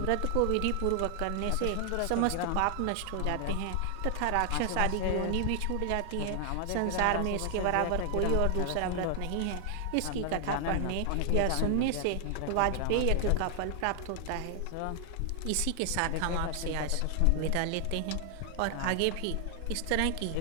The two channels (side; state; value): both; different; correlation 0.00